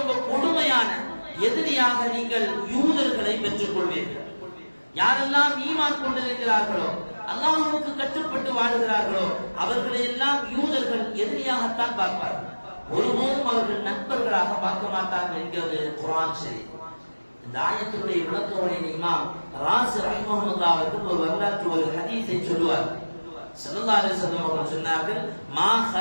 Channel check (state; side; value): inverted; both; correlation -1.00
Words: கொடுமையான எதிரியாக நீங்கள் யூதர்களை பெற்றுக் கொள்வீர்கள். யாரெல்லாம் ஈமான் கொண்டிருக்கிறார்களோ, அல்லாஹ்வுக்கு கட்டுப்பட்டு வாழுகிறார்களோ, அவர்களை எல்லாம் யூதர்கள் எதிரியாகத்தான் பார்ப்பார்கள். ஒருபோதும் அவர்கள் நண்பர்களாக பார்க்க மாட்டார்கள் என்கிறது குர்ஆன் ஷரீஃப். இந்த ஆயத்தினுடைய விளக்கவுரை இமாம் ராஸி ரஹ்மஹுல்லாஹ் அவர்கள் ஒரு வரலாற்று ஒரு ஹதீஸை சொல்லுவார். ஸல்லல்லாஹு அலைஹி வஸல்லம் அவர்கள் சொன்னார்கள், மா